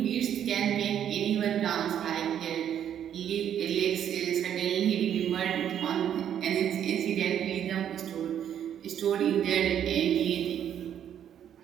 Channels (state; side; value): quieter; left; 9.7 dB